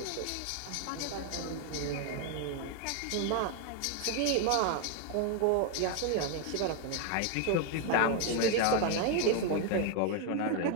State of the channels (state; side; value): different; both; correlation 0.01